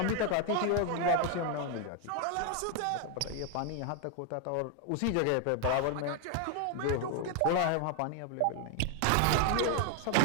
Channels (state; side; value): different; both; correlation 0.00